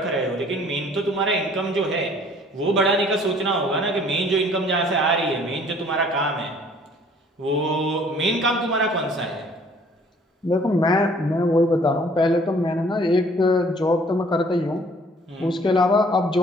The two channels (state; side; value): normal; both; correlation 0.56